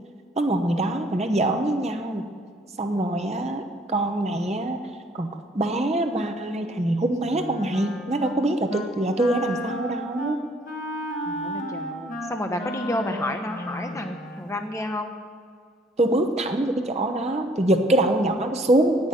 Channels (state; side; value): normal; both; correlation 0.61